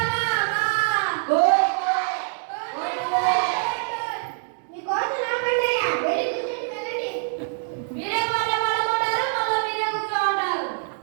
కోయ్ కోయ్ కోయ్. మీ కోసం రాకండియా, వెళ్ళి కూర్చొని వెళ్ళండి. మీరే పాట పాడమంటారు, మళ్ళీ మీరే కూర్చోమంటారు.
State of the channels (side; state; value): left; silent; 62 dB below the other